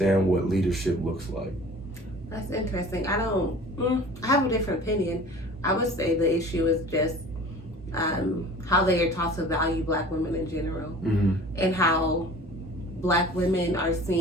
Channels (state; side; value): normal; both; correlation 0.44